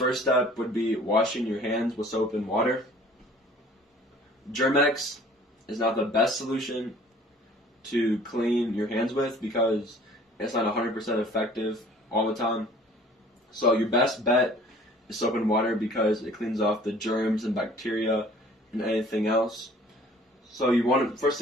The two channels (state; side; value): normal; both; correlation 0.51